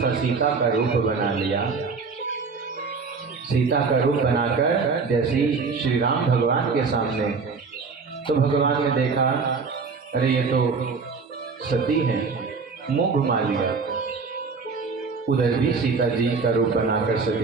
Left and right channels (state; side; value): quieter; left; 4.8 dB